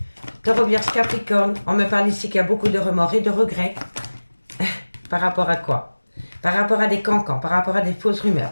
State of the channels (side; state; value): both; inverted; correlation -1.00